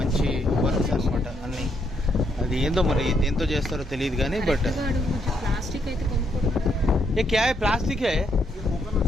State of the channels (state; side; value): normal; both; correlation 0.75